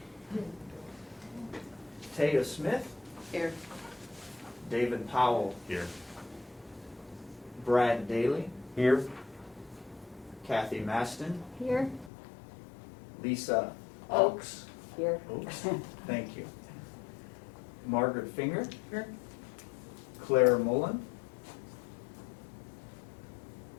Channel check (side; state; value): right; drops out; at 12.1 s